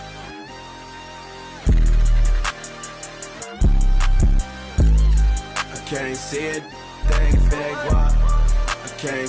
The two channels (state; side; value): identical; both; correlation 1.00